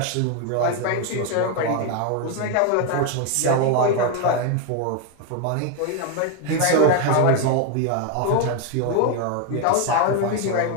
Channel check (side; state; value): both; different; correlation 0.01